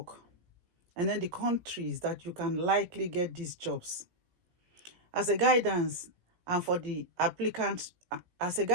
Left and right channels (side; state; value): left; late; 17 ms